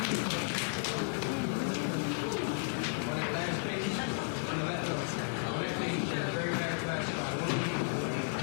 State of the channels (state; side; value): silent; right; 55 dB below the other